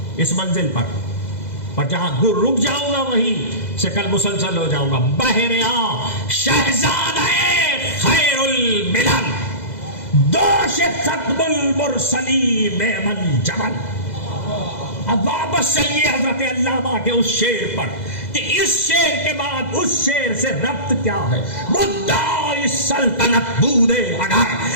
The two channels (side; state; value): right; late; 2.0 ms